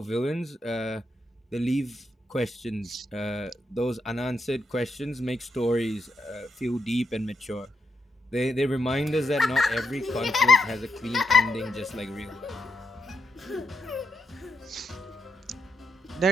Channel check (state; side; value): normal; both; correlation 0.81